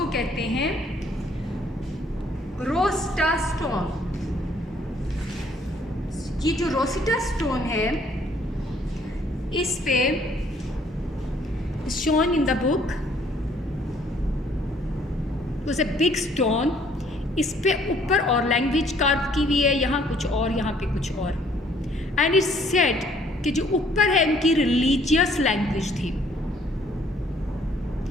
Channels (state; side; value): normal; both; correlation 0.62